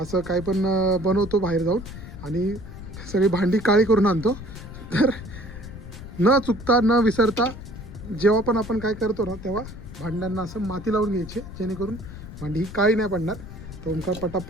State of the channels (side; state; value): left; noise; rumble, 12 dB below the sound